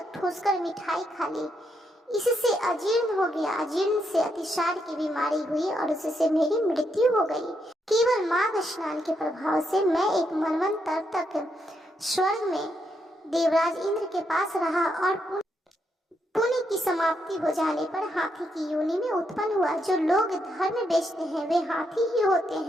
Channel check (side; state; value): both; normal; correlation 0.79